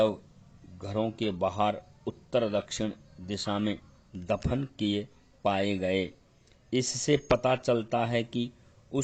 घरों के बाहर उत्तर दक्षिण दिशा में दफन किए पाए गए। इससे पता चलता है कि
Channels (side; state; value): both; identical; correlation 1.00